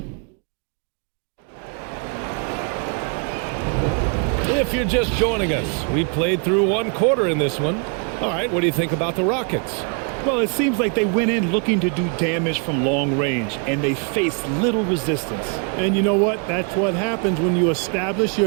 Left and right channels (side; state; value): left; quieter; 38.5 dB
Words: If you're just joining us, we played through one quarter in this one. All right, what do you think about the Rockets? Well, it seems like they went in looking to do damage from long range, and they faced little resistance. And you know what? That's what happens when you establish